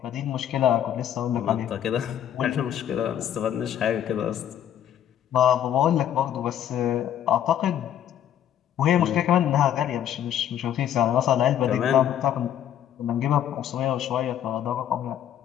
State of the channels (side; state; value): right; quieter; 10.4 dB